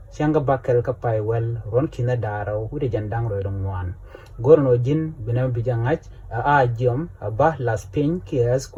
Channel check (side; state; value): both; identical; correlation 1.00